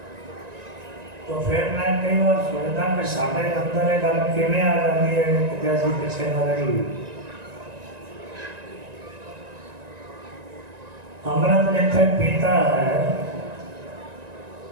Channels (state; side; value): late; left; 1.9 ms